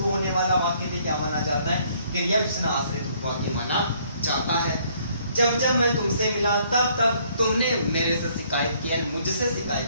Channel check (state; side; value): inverted; both; correlation -0.64